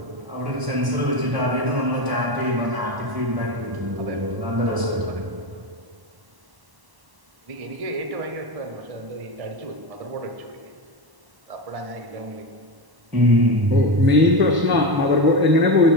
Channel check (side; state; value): left; late; 1.1 ms